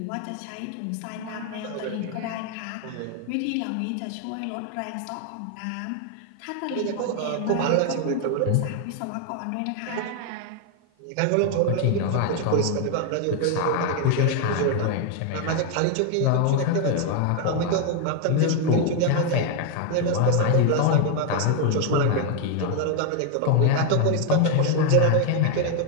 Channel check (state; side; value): different; both; correlation 0.01